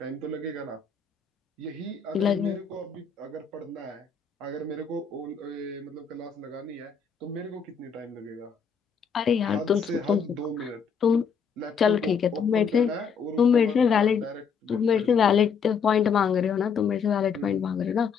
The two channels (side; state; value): right; quieter; 6.2 dB